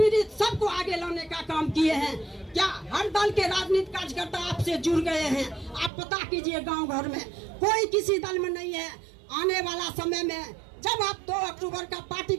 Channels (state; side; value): drops out; left; at 5.9 s